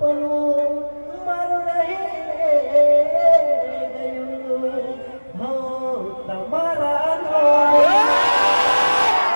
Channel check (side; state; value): both; inverted; correlation -1.00